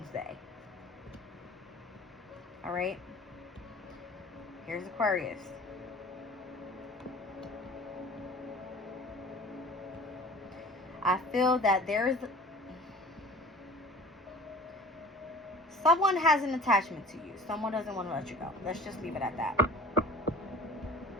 Day. All right? Here's Aquarius. I feel that there's... someone has an attachment to you. Someone doesn't want to let you go. Let's just leave it at that.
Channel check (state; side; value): normal; both; correlation 0.43